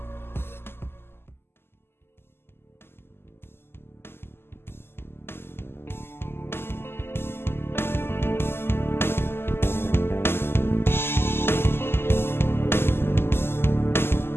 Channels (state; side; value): late; right; 0.11 ms